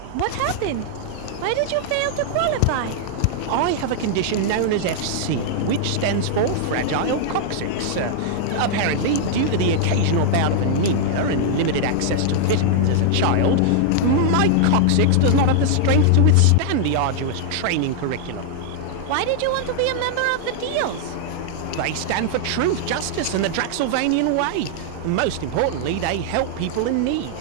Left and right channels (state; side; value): different; both; correlation -0.01